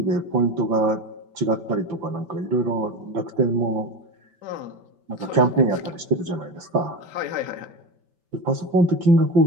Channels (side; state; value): left; late; 5.8 ms